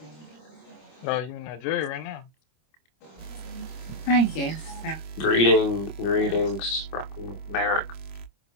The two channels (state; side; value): late; right; 25 ms